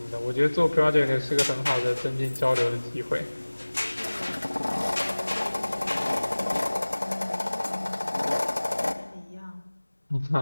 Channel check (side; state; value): both; inverted; correlation -1.00